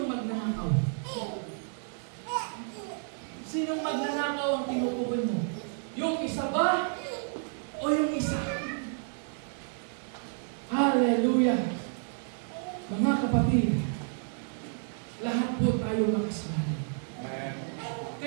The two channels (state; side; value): silent; left; 57 dB below the other